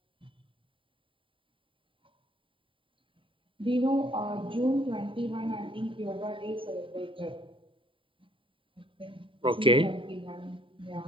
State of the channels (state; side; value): late; left; 0.25 ms